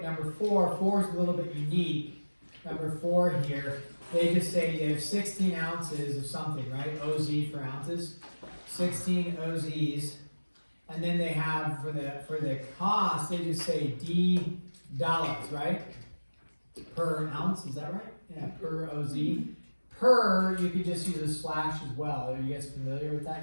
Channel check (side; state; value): both; inverted; correlation -1.00